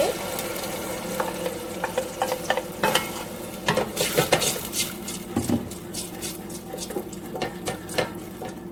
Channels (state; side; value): identical; both; correlation 1.00